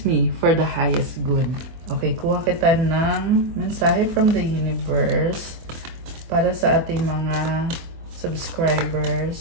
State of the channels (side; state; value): left; late; 24 ms